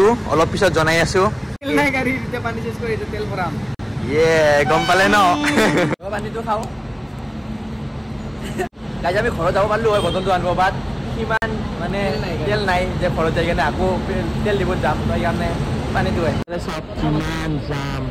অলপ পিছত জনাই আছো তেল নাই গাড়ীতে পানী চেঞ্জ কৰি তেল ভৰাম গম পালে ন পানীটো খাও গাইস আমি ঘৰত যাব পাৰলো হয় বটলটো আনব বাট কিমান মানে তেল নাই যে ঘৰত যাই কেনে আকৌ তেল দিব যাম তো ইয়ানে পানীটো হয় সব কিমান যাম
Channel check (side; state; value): both; identical; correlation 1.00